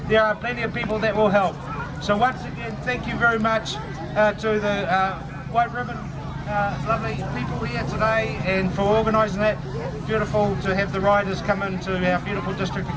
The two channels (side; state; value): both; identical; correlation 1.00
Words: there are plenty of people that will help. So once again, thank you very much to the White Ribbon lovely people here today, and for organising that. Beautiful to have the riders come into our beautiful district